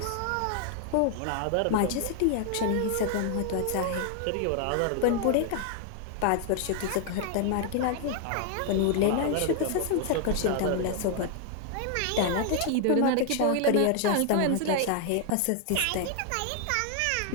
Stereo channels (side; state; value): both; different; correlation 0.00